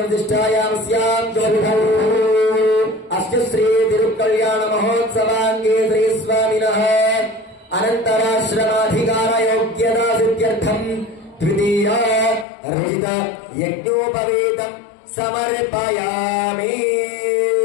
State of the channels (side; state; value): right; drops out; at 12.5 s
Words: స్యాం జ్యోతిః అస్య శ్రీ తిరుకళ్యాణ మహోత్సవాంగే శ్రీ స్వామినః అనంతరాశ్రమాధికార యోగ్యతా సిద్ధ్యర్థం ద్వితీయ రచిత యజ్ఞోపవేతం సమర్పయామి.